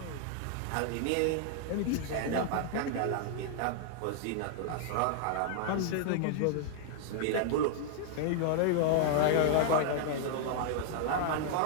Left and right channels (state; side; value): different; both; correlation 0.00